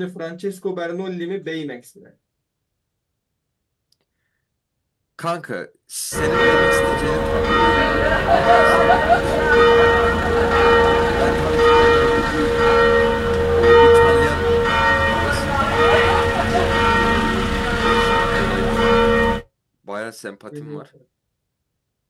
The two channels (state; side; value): identical; both; correlation 1.00